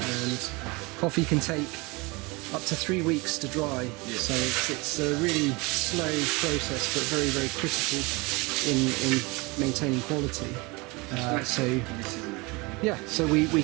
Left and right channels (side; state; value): left; quieter; 25.7 dB